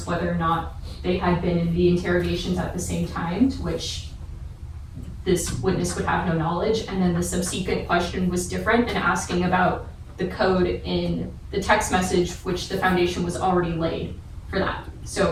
whether or not they had been in the interrogations at the same time, to which this witness would have no knowledge, and then the subsequent question was different and asking about the code in the text message, which the foundation was already laid for that. So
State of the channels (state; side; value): identical; both; correlation 1.00